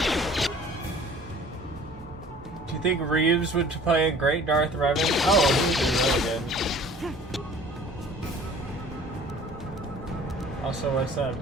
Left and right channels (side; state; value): both; normal; correlation 0.48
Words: I think Reeves would play a great Darth Revan. Oh, he would be really good. Also, what's up?